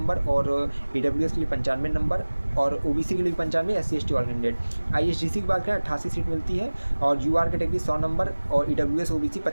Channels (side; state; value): both; inverted; correlation -1.00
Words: और ईडब्ल्यूएस के लिए 95 नंबर और ओबीसी के लिए 95, एससी एसटी ऑल कैंडिडेट। आईएसडीसी की बात करें 88 सीट मिलती है और यूआर कैटेगरी 100 नंबर और ईडब्ल्यूएस ओबीसी